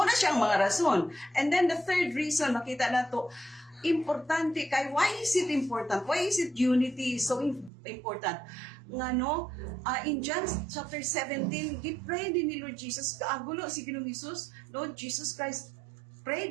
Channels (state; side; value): drops out; left; at 7.7 s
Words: na siya ang mga rason. And then the third reason makita nato importante kay why is it important? Why is it unity so important? Nga no, in John chapter 17, gi-pray din ni Lord Jesus, kaagulo si Ginoong Hesus, Lord Jesus Christ